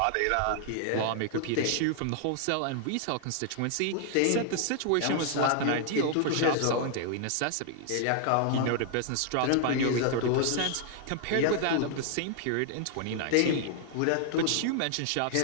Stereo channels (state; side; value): different; both; correlation 0.00